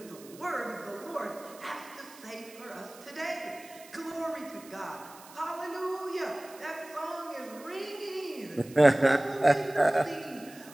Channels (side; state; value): right; noise; hiss, 20 dB below the sound